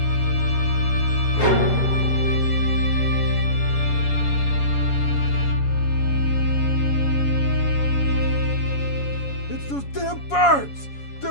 It's those damn birds!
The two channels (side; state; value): right; late; 7.2 ms